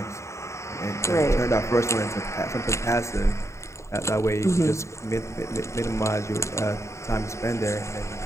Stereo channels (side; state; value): right; late; 0.14 ms